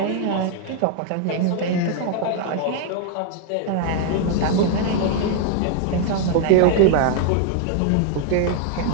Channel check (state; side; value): different; both; correlation 0.00